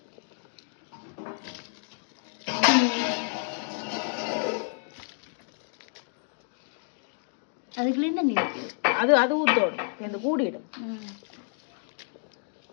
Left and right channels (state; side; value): silent; right; 58 dB below the other